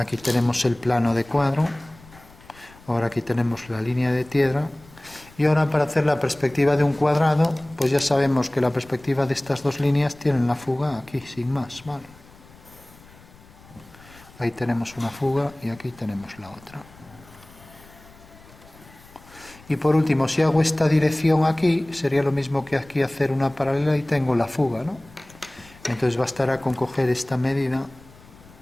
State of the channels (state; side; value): noise; left; rumble, 24 dB below the sound